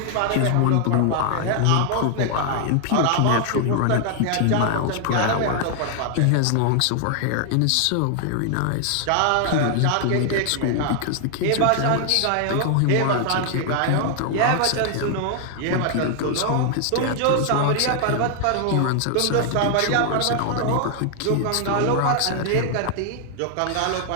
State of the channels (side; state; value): both; different; correlation 0.00